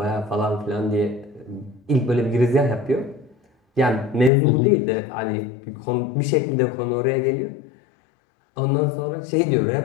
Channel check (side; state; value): right; drops out; at 4.3 s